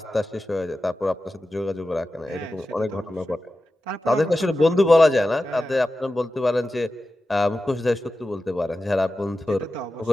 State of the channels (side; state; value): both; normal; correlation 0.93